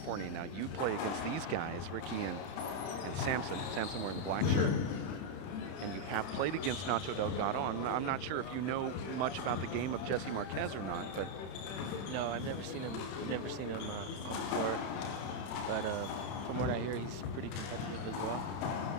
Now you play against these guys, Ricky and Samson. Samson wearing the black shirt. And you have played against Nacho Delgado. I'm not sure if you know much about the game of Jesse Marquez or not, but no, I've never seen him. Never seen him on the court. But from what I hear, he's pretty competitive as well.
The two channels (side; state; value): right; late; 31 ms